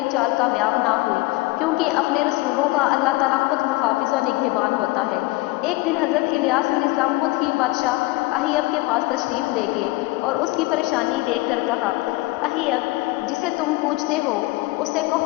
چال کامیاب نہ ہوئی، کیونکہ اپنے رسولوں کا اللہ تعالیٰ خود محافظ و نگہبان ہوتا ہے۔ ایک دن حضرت الیاس علیہ السلام خود ہی بادشاہ اہیب کے پاس تشریف لے گئے اور اس کی پریشانی دیکھ کر کہا، اہیب، جسے تم پوچھتے ہو اسے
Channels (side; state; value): right; quieter; 21.0 dB